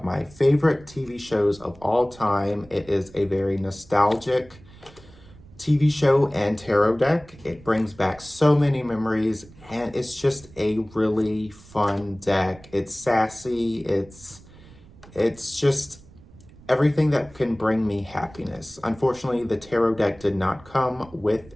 my favorite TV shows of all time. It is a very nostalgic TV show and tarot deck. It brings back so many memories, and it's just a really fun deck. It's sassy, it's just everything that can bring me happiness. Unfortunately, the tarot deck did not come with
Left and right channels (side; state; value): right; noise; rumble, 23 dB below the sound